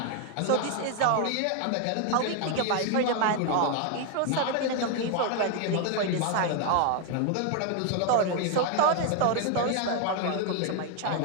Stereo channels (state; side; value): different; both; correlation 0.01